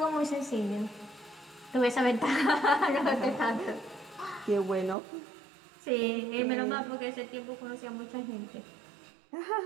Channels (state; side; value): drops out; left; at 5.0 s